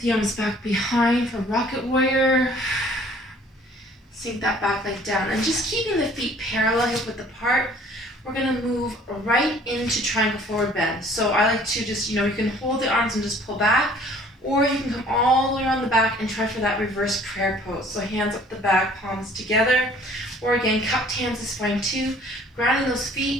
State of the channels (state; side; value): normal; both; correlation 0.54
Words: arms back behind for rocket warrior. Sink that back leg down. And just keeping the feet parallel, hip width apart, we're going to move right into triangle forward bend. So I like to just, you can hold the arms and just pull back. Or you can come all the way around the back and try for that reverse prayer pose. So hands up the back, palms together. Or again, cupped hands is fine too. Grounding those